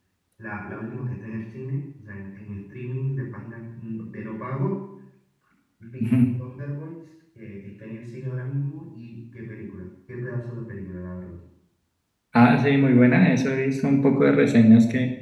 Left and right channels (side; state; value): both; identical; correlation 1.00